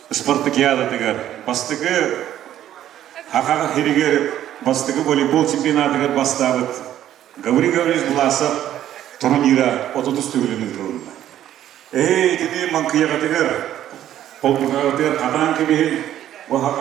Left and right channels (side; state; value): left; quieter; 11.8 dB